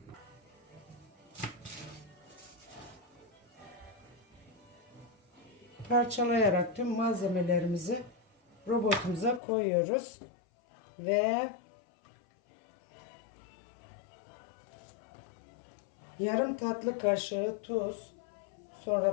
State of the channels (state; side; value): drops out; right; at 9.4 s